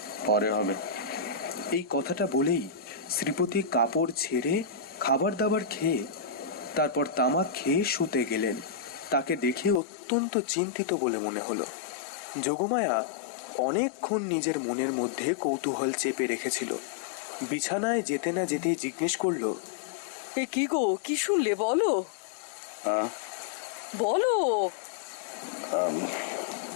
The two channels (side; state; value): right; drops out; at 9.8 s